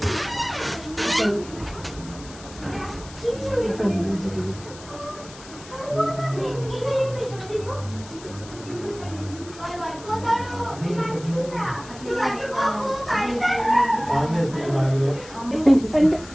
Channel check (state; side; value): noise; left; hiss, 18 dB below the sound